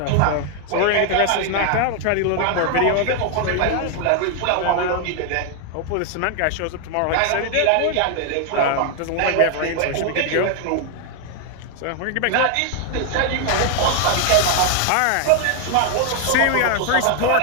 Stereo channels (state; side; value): different; both; correlation 0.00